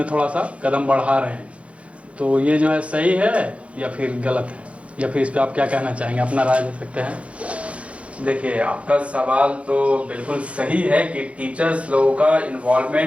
थोड़ा सा कदम बढ़ा रहे हैं। तो ये जो है सही है या फिर गलत है, या फिर इस पर आप क्या कहना चाहेंगे, अपना राय दे सकते हैं। देखिए, आपका सवाल तो बिल्कुल सही है कि टीचर्स लोगों का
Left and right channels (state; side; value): late; left; 0.062 ms